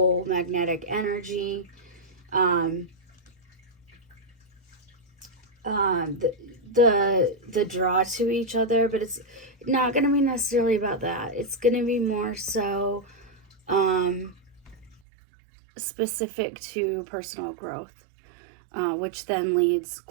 magnetic energy. The draw to each other, but it's not going to be necessarily about that. It's going to be more so specific to personal growth, which then leads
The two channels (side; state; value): left; drops out; at 15.0 s